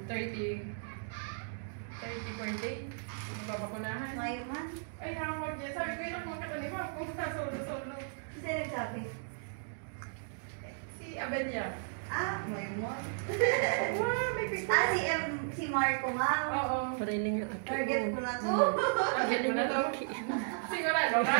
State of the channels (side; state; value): left; silent; digital silence